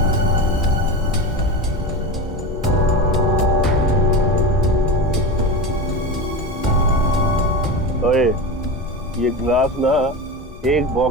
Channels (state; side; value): normal; both; correlation 0.24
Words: ओए, ये ग्लास ना एक